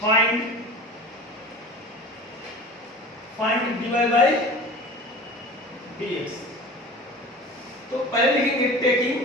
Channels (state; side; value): normal; both; correlation 0.37